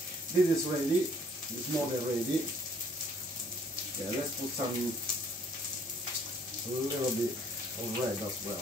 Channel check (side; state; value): both; normal; correlation 0.60